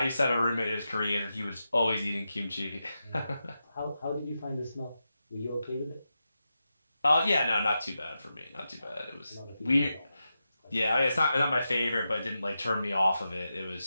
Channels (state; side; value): inverted; both; correlation -0.89